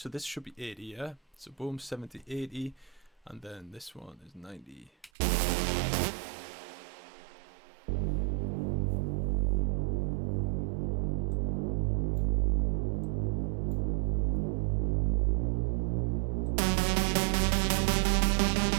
this should be 80, yeah? So boom, 70, 80, and then this one is 90.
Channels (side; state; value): left; drops out; at 5.1 s